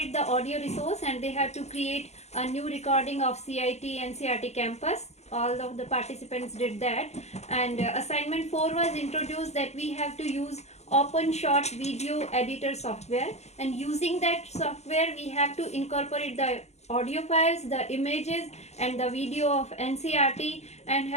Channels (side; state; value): right; late; 0.32 ms